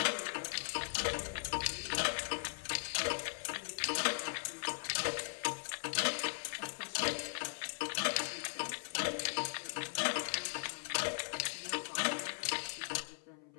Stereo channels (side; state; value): right; silent; 52 dB below the other